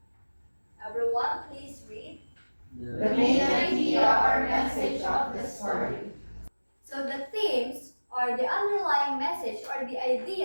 Everyone, please read. The main idea or message of the story. So the themes are the underlying message or the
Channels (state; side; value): inverted; both; correlation -1.00